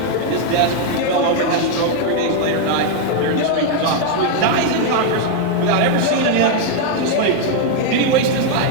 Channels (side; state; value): both; different; correlation 0.00